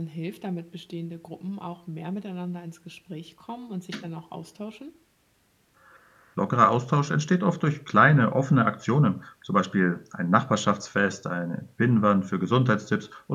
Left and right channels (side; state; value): both; identical; correlation 1.00